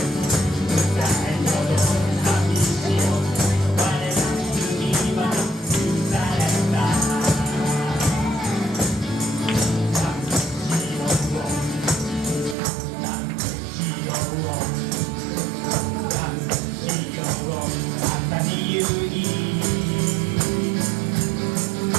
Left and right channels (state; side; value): drops out; left; at 12.6 s